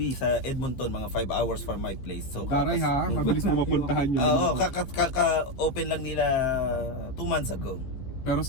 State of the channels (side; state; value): right; late; 15 ms